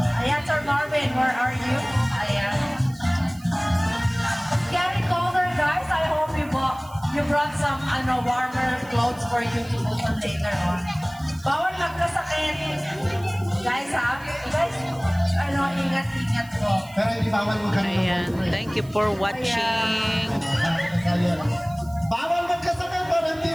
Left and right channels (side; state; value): right; noise; hiss, 23 dB below the sound